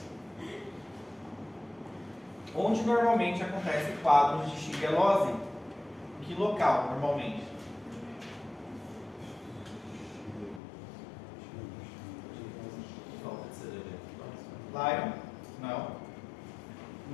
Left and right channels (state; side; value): drops out; right; at 10.6 s